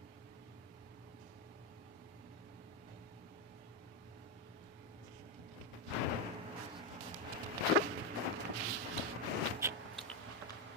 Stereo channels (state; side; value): normal; both; correlation 0.06